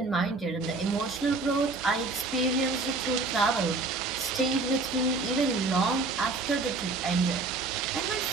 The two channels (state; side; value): quieter; left; 3.6 dB